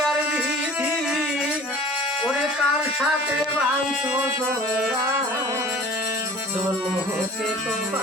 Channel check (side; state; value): both; normal; correlation 0.45